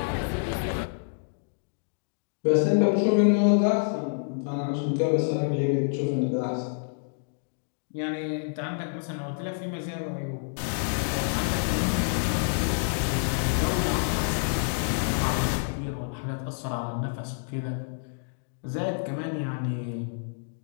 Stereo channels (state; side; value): silent; right; digital silence